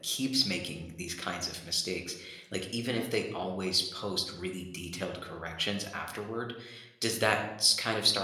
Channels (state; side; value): identical; both; correlation 1.00